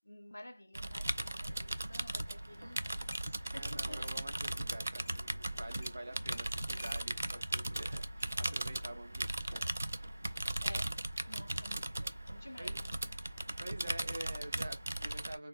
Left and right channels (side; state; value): both; inverted; correlation -0.93